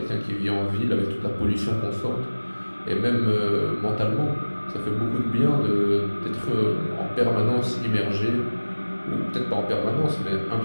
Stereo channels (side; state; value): both; inverted; correlation -1.00